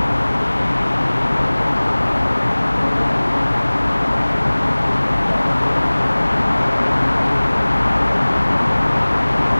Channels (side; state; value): both; inverted; correlation -1.00